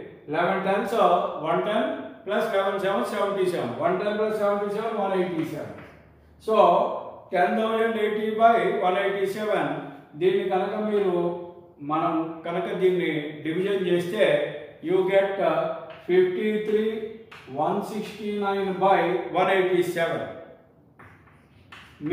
11 10s 110 plus 11 7 77 110 plus 77 187. So 10,080/187. దీన్ని కనుక మనం కనుక దీన్ని డివిజన్ చేస్తే యూ గెట్ 53,169/187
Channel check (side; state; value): both; identical; correlation 1.00